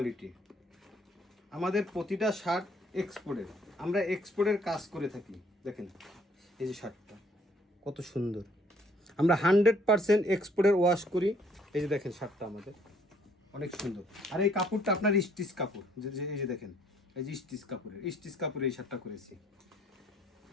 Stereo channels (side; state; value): both; normal; correlation 0.63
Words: আমাদের প্রতিটা শার্ট এক্সপোর্টের, আমরা এক্সপোর্টের কাজ করে থাকি। দেখেন এই যে শার্টটা কত সুন্দর, আমরা 100% এক্সপোর্টের ওয়াশ করি। এই যে দেখেন শার্টটা আমাদের অনেক সুন্দর। আর এই কাপড়টা আপনার স্টিচ কাপড়, এই যে দেখেন এই যে স্টিচ কাপড়ের এই শার্টটা করেছি।